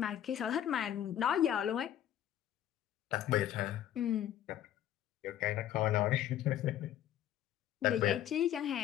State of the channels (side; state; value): right; quieter; 11.3 dB